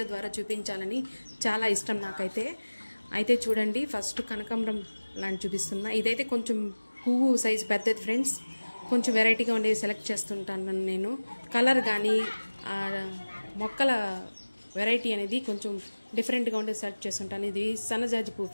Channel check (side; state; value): both; inverted; correlation -1.00